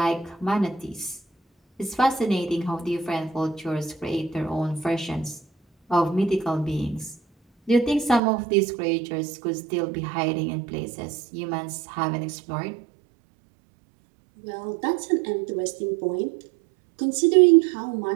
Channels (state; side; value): drops out; left; at 8.2 s